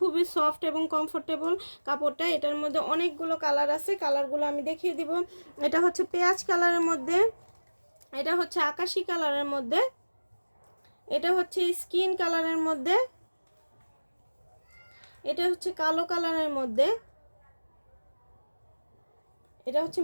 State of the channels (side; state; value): both; inverted; correlation -1.00